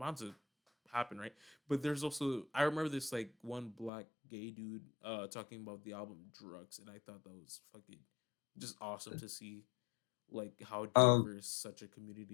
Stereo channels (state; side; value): drops out; right; at 3.9 s